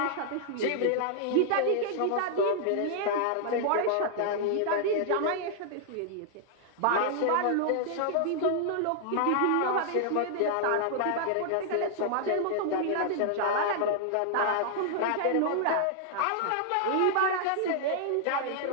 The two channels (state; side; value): different; both; correlation -0.01